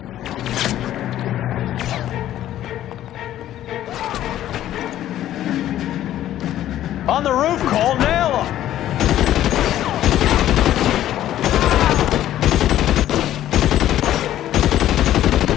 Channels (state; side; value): quieter; right; 12.6 dB